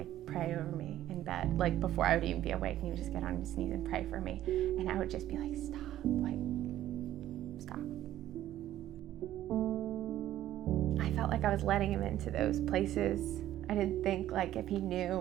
pray over me in bed. Like before I would even be awake, he would just get on his knees and pray for me. And I would just be like, stop, like, stop. felt like I was letting him into those places. I didn't think like if he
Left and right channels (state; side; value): quieter; left; 13.0 dB